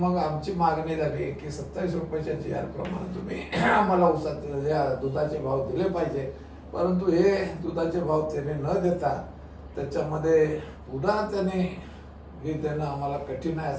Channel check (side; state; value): both; identical; correlation 1.00